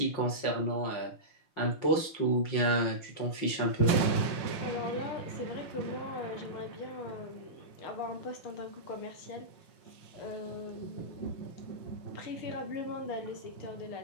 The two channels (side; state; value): right; late; 5.8 ms